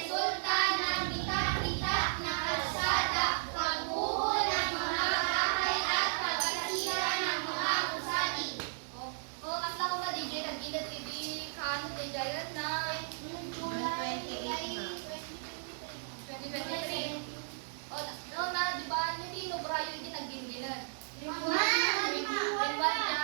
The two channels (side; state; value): left; silent; digital silence